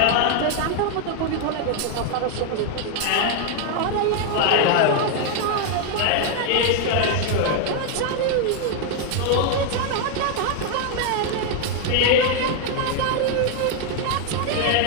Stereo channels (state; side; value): different; both; correlation 0.00